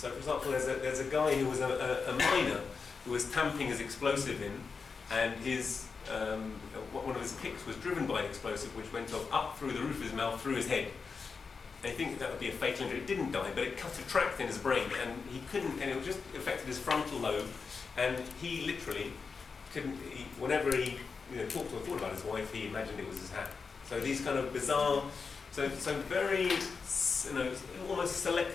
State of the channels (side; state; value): right; quieter; 5.1 dB